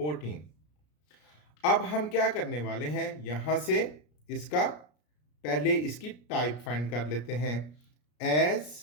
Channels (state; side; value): late; right; 33 ms